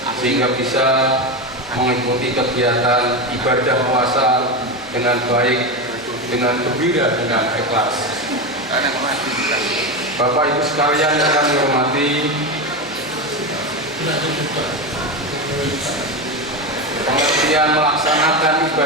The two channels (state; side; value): noise; right; hum, 27 dB below the sound